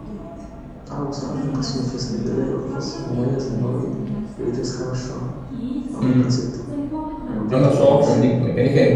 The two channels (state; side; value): identical; both; correlation 1.00